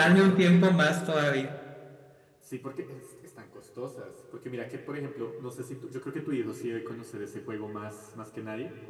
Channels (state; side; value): identical; both; correlation 1.00